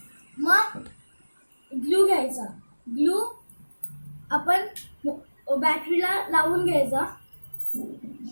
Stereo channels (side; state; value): both; inverted; correlation -1.00